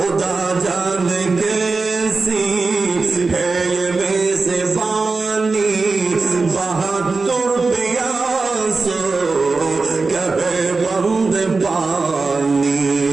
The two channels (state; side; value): quieter; left; 4.0 dB